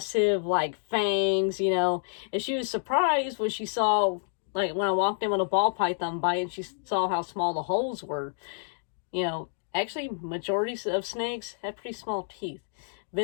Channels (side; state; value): right; silent; digital silence